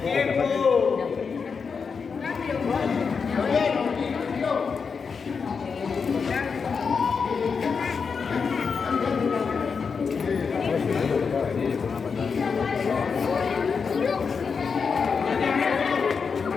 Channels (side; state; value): right; quieter; 5.6 dB